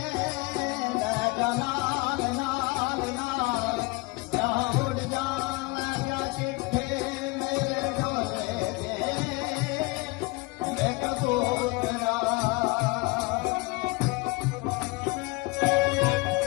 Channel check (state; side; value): quieter; right; 24.3 dB